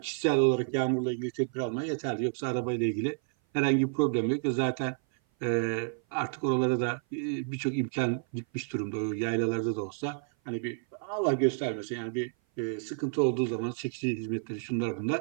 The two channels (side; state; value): left; silent; 56 dB below the other